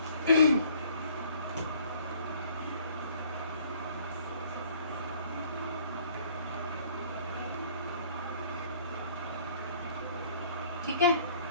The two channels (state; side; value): inverted; both; correlation -0.57